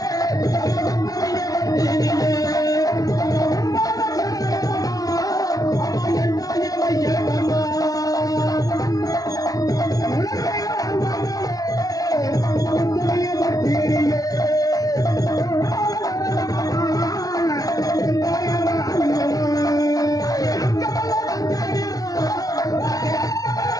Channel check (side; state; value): right; late; 0.18 ms